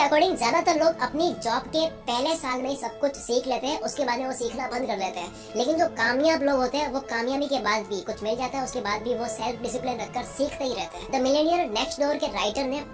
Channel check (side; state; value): both; identical; correlation 1.00